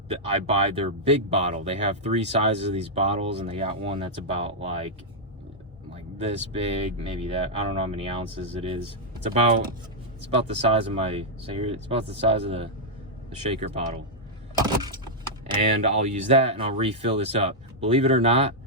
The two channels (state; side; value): normal; both; correlation -0.05